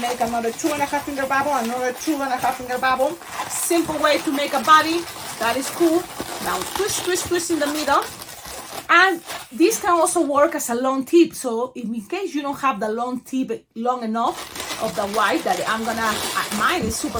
make another 2.5-finger bubble, another 2.5-finger bubble. Simple way to make a body. That is cool. Now twist, twist, twist in the middle. And this can also work as a long tip. So in case you don't have the long tip long enough of the white, that mine is super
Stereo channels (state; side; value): identical; both; correlation 1.00